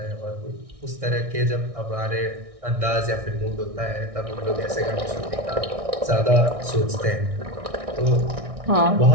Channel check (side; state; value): left; late; 1.6 ms